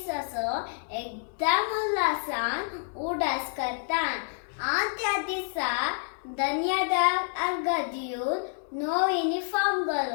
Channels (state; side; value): silent; right; 59 dB below the other